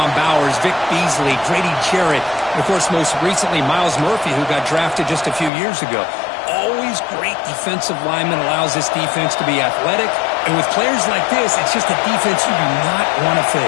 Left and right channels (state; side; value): drops out; right; at 5.5 s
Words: Bowers, Vic Beasley, Grady Jarrett, and of course, most recently, Miles Murphy, who got drafted just a few years ago. Always great defensive lineman, allows this defense to be athletic. And with players like this, it's just a defense you do not want to